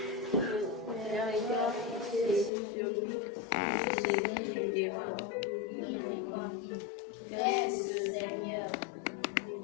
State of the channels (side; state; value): right; drops out; at 2.5 s